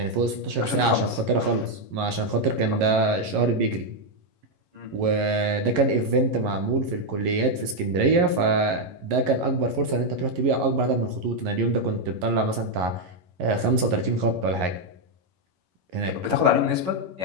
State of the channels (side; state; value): left; late; 11 ms